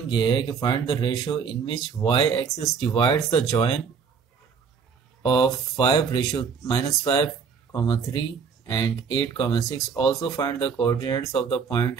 ये है कि find the ratio in which Y axis divides the join of 5 ratio -5, 3 and 8, 6। Also find the coordinates of the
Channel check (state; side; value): quieter; left; 6.1 dB